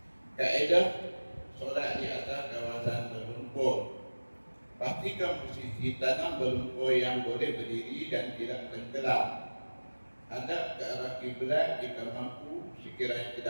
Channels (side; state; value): both; inverted; correlation -1.00